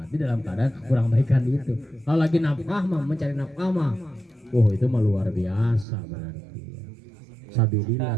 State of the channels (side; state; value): left; drops out; at 5.9 s